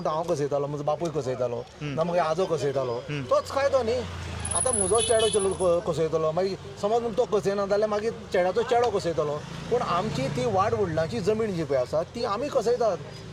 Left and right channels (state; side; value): identical; both; correlation 1.00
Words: हांव कसयतालो म्हजो बापूय कसयतालो ना मागीर आजो कसयतालो तोच कायदो न्ही. आतां म्हजो चेडो कसयतलो मागीर समज म्हणटा तो कसयना जाल्यार मागीर चेड्याचो चेडो कसयतलो पूण आमची ती वाड वडिलांची जमीन जी पळय आसा ती आमी कसयतात.